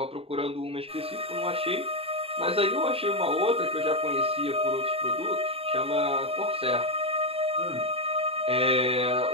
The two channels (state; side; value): late; left; 0.28 ms